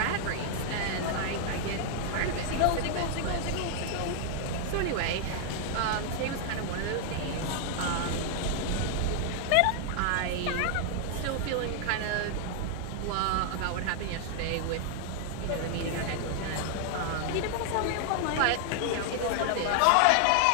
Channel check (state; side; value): different; both; correlation 0.00